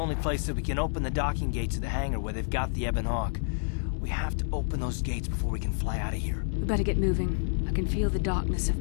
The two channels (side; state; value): right; silent; digital silence